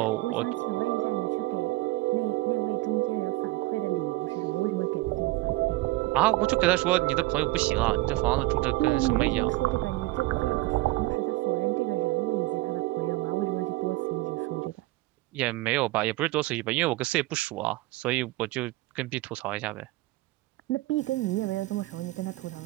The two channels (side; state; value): left; quieter; 19.8 dB